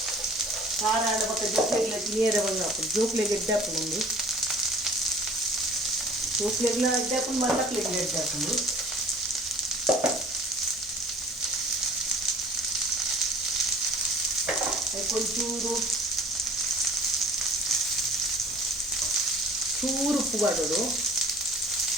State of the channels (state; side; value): normal; both; correlation 0.47